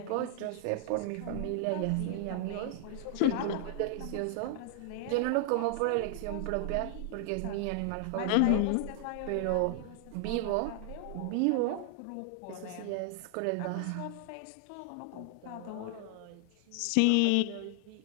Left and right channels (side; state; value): both; different; correlation 0.00